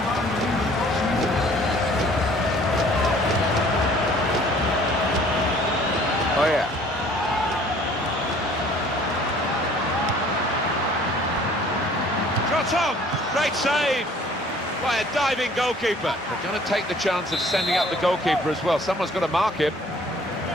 Oh, yeah. Shot on! Great save by a diving goalkeeper. They're going to take the chance of sending up the goalkeeper as well. Someone's got to mark him.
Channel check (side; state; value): both; normal; correlation 0.54